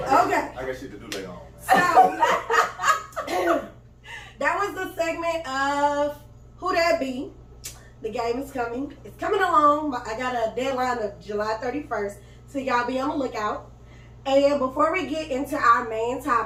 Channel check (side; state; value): both; identical; correlation 1.00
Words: I got shit to do later on. So that was the segment of Who That Be. The game is coming. It's coming along. I got a deadline of July 31st, so y'all be on the lookout. And before we get into our main